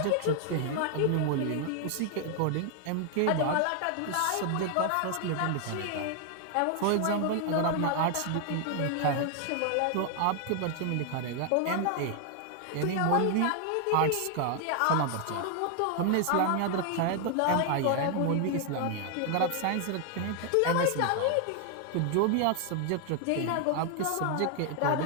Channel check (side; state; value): both; different; correlation 0.00